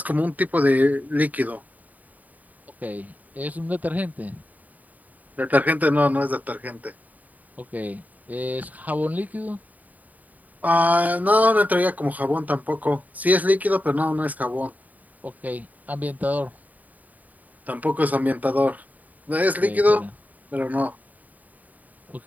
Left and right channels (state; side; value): late; left; 0.076 ms